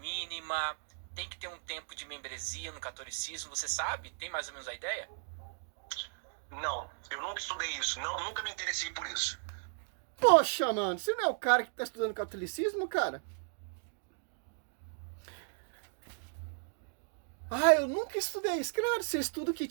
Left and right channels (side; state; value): left; silent; digital silence